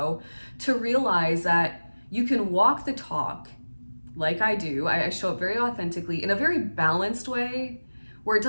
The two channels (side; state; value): both; inverted; correlation -1.00